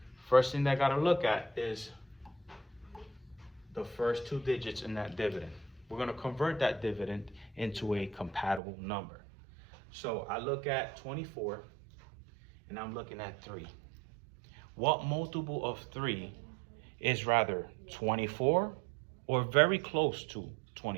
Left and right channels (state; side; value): drops out; left; at 8.6 s